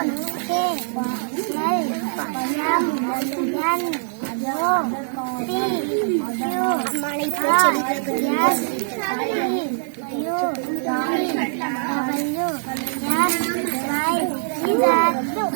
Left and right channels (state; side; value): silent; left; digital silence